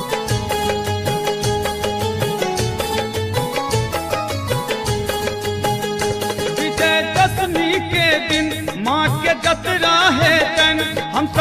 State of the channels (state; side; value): identical; both; correlation 1.00